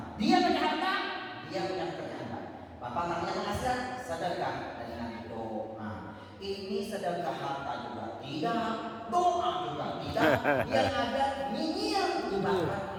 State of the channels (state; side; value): identical; both; correlation 1.00